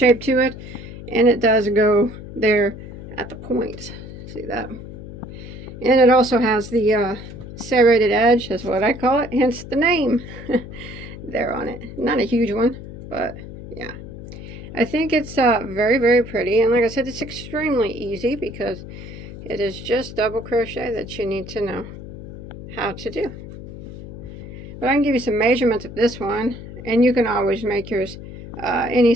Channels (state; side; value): noise; left; hum, 12 dB below the sound